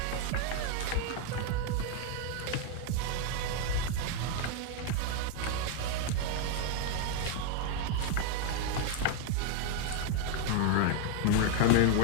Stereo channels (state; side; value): different; both; correlation 0.01